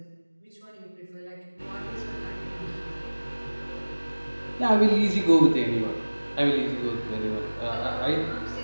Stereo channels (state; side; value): inverted; both; correlation -1.00